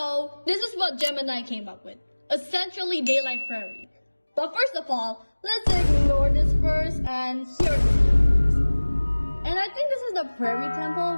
this is what Gemini came up with. Essentially Daylight Prairie. But first of all, let's ignore this first, and here it is. And I think this is the Prairie Temple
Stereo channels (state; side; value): inverted; both; correlation -1.00